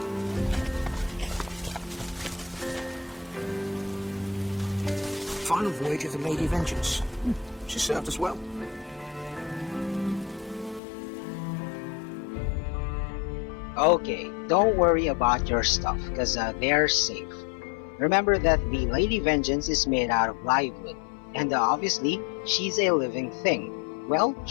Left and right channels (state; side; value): drops out; right; at 10.8 s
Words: Final voyage of the Lady Vengeance. She served us well. Okay, don't worry about your stuff, cause they're safe. Remember that the Lady Vengeance is made out of live wood, and obviously, she's a living thing. Well,